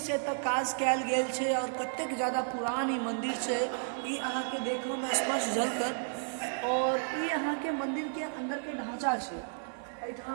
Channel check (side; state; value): left; silent; digital silence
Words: से एतऽ काज कयल गेल छे और कतेक ज्यादा पुरान ई मंदिर छे ई अहाँ के देखो में स्पष्ट झलकत। और ई अहाँ के मंदिर के अंदर के ढांचा छे।